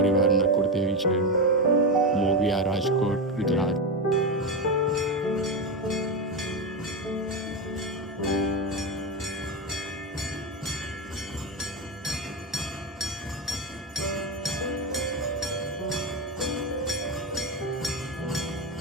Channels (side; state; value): both; normal; correlation 0.13